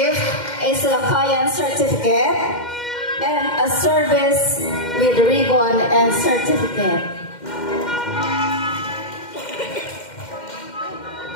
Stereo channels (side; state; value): right; late; 2.1 ms